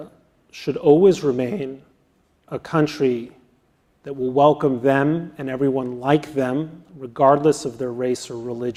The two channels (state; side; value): identical; both; correlation 1.00